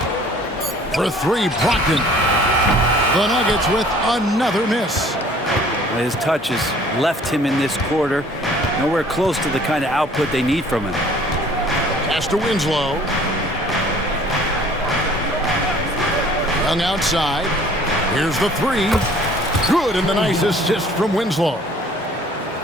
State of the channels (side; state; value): both; normal; correlation 0.53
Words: For 3, Brogdon. The Nuggets with another miss. His touch has left him in this quarter. Nowhere close to the kind of output they need from him. Pass to Winslow. Young outside. Here's the 3. Good, and the nice assist from Winslow.